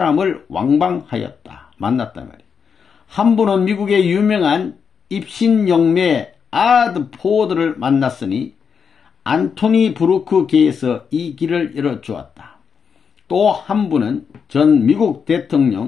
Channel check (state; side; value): quieter; right; 6.4 dB